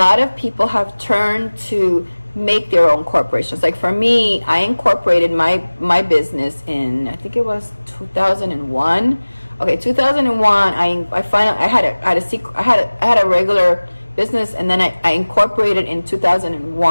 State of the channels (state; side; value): inverted; both; correlation -1.00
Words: of people have turned to make their own corporations. Like for me, I incorporated my business in, I think it was 2001. Okay, 2001. I finally I had a regular business, and then I incorporated in